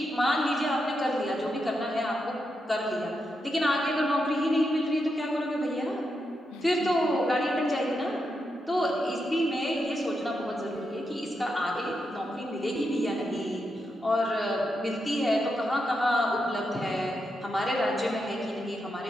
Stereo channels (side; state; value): both; normal; correlation 0.84